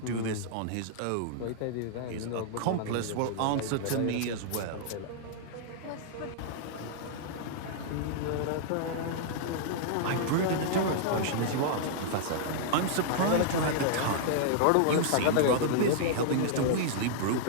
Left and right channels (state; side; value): different; both; correlation -0.01